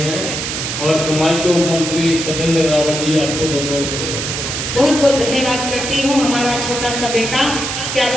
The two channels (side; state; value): right; noise; hiss, 3 dB below the sound